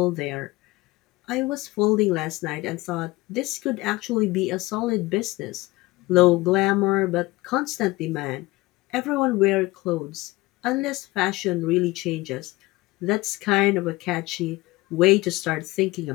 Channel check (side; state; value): right; quieter; 20.7 dB